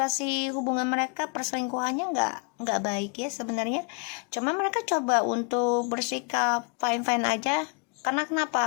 hubungan mereka, perselingkuhannya nggak baik ya sebenarnya. Cuma mereka coba untuk bersikap fine aja. Karena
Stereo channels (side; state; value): right; quieter; 34.8 dB